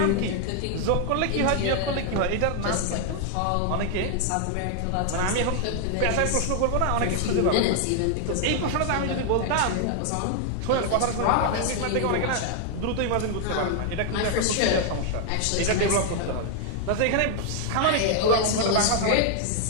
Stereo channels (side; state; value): both; different; correlation 0.00